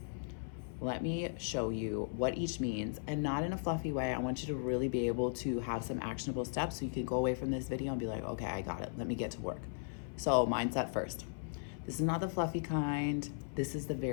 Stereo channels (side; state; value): right; silent; 53 dB below the other